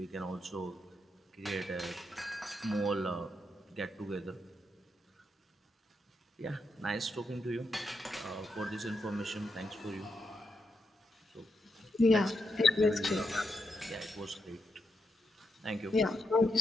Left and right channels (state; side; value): normal; both; correlation 0.83